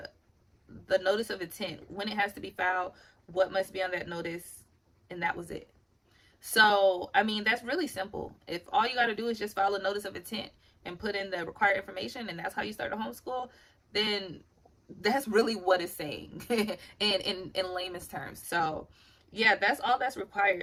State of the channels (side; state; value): both; identical; correlation 1.00